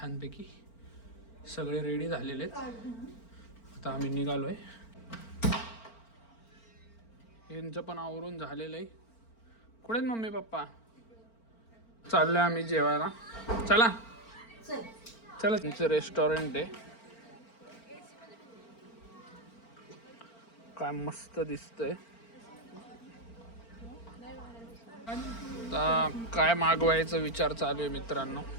सगळे रेडी झालेले आहेत. आता आम्ही निघालोय. यांचं पण आवरून झालेलं आहे. कुठे आहेत मम्मी पप्पा? चाललोय आम्ही जेवायला. चला चला. तुमचं रेस्टॉरंट आहे. काय मस्त दिसतंय. आता काय मागवायचा विचार चालू आहे मित्रांनो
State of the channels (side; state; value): right; late; 4.4 ms